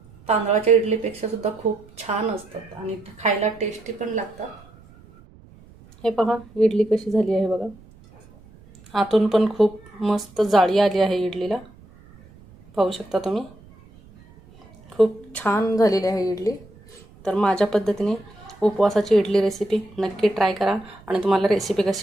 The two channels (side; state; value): right; noise; rumble, 24 dB below the sound